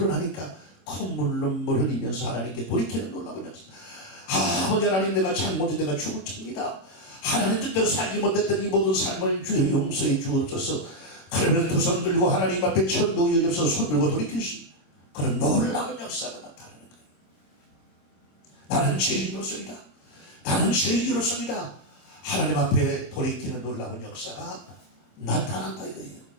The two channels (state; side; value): late; right; 26 ms